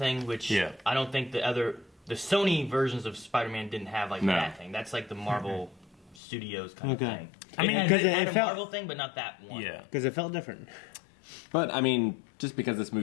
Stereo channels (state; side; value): drops out; right; at 6.2 s